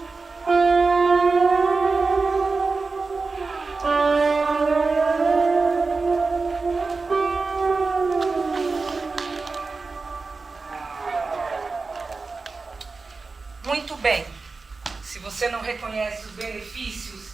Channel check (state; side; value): quieter; left; 4.1 dB